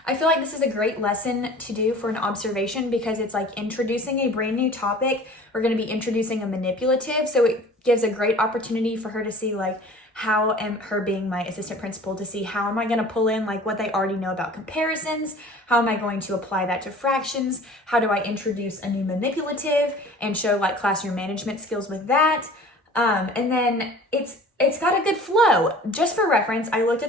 I feel like this is a great lesson to do for an observation because it's like introducing a brand new topic. We're going to be introducing a manipulative, so it gives a great opportunity for her to see like how am her being my assistant principal to see how am I going to pull in like what they already know about comparisons, how am I going to apply that to fractions, how do I introduce a new manipulative and show like classroom management skills with that. And then it's got a good flow. Just for reference, I looked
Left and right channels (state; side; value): normal; both; correlation 0.45